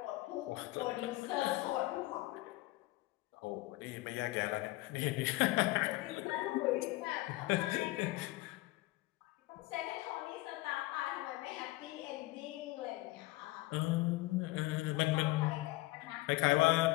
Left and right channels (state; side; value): quieter; right; 19.7 dB